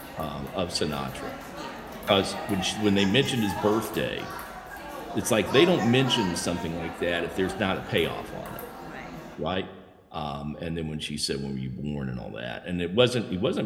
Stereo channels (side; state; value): both; identical; correlation 1.00